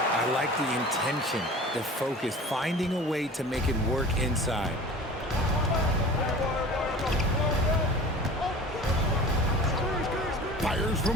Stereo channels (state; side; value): normal; both; correlation 0.40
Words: like the intention, the focus, finding a way to make it work inside. Fires